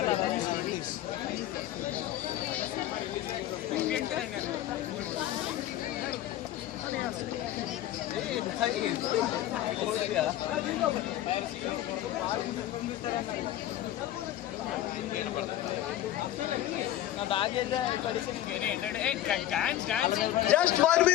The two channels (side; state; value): right; quieter; 13.3 dB